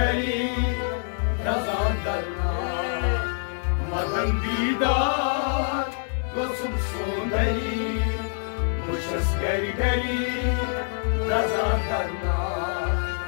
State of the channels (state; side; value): silent; right; 61 dB below the other